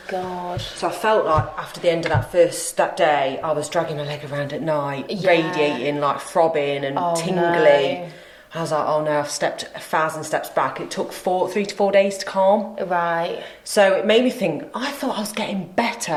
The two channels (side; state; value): both; identical; correlation 1.00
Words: God. So I felt like after the end of that day, I was dragging my leg around at night, radiating, like throbbing and tingly. No. I was like, oh no, I've stepped 1,000 steps back. It took 3 to 4 days to calm. Right. So it made me think, I thought I was getting